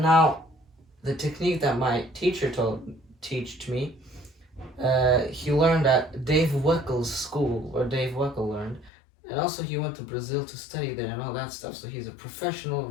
now the technique that my teacher taught me, he learned at Dave Weckel's school, where Dave Weckel learned, and also he went to Brazil to study there and all that stuff. So he's a professional,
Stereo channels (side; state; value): right; drops out; at 8.9 s